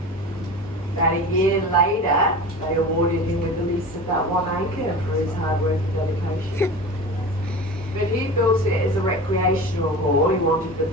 About a year later, they awarded him with a lease of that 1 acre for his hard work and dedication. But he built it as a recreational hall. He wanted the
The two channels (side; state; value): both; normal; correlation 0.33